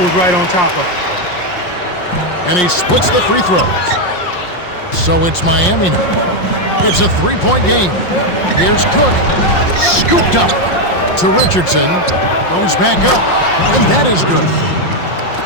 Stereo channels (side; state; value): right; late; 5.6 ms